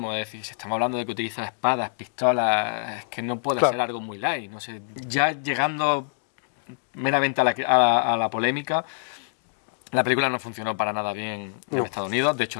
es decir, si estamos hablando de que utiliza espadas, pistolas, es que no puede ser algo muy light, no sé. Ya llegando meramente a la polémica, la película no funcionó para nada bien en Estados Unidos, de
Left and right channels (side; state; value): right; silent; digital silence